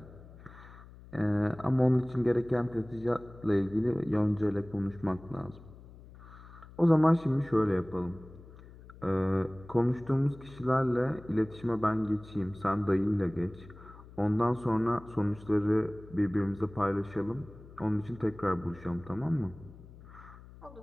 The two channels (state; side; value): noise; left; hum, 19 dB below the sound